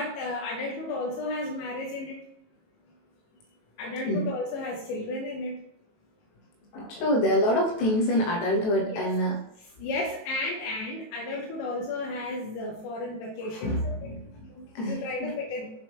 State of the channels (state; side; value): late; right; 18 ms